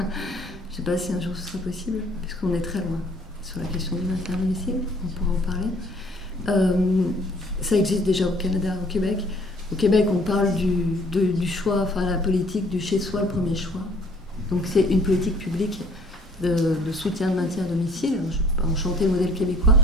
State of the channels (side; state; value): both; normal; correlation 0.57